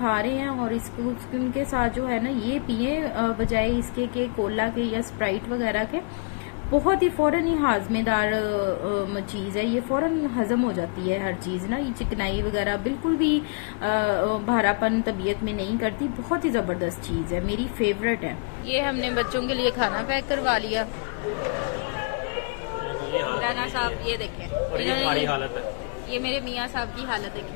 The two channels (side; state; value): right; quieter; 35.8 dB